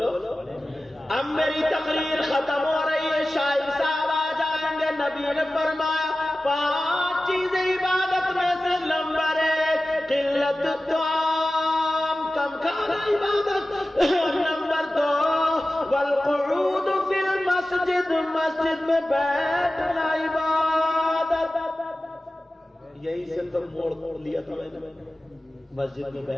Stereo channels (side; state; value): both; normal; correlation 0.95